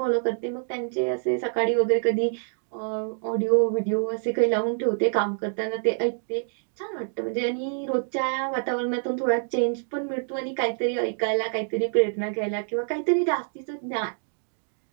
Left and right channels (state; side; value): silent; left; digital silence